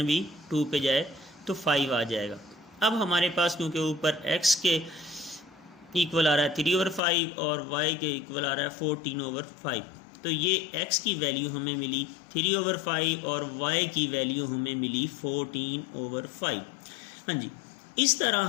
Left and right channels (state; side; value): drops out; right; at 7.0 s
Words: भी 2 पे जाए तो 5 आ जाएगा। अब हमारे पास क्योंकि ऊपर x के इक्वल आ रहा है 3/5 और y के इक्वल आ रहा है 14/5, तो ये x की वैल्यू हमें मिली 3/5 और y की वैल्यू हमें मिली 14/5। हाँ जी, इस तरह